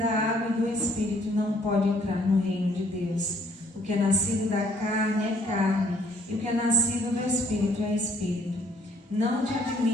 água e do Espírito não pode entrar no reino de Deus. O que é nascido da carne é carne, e o que é nascido do Espírito é Espírito. Não te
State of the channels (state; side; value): normal; both; correlation 0.63